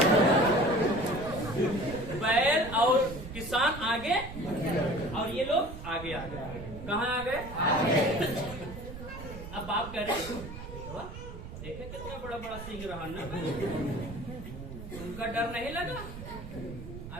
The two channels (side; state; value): right; noise; rumble, 11 dB below the sound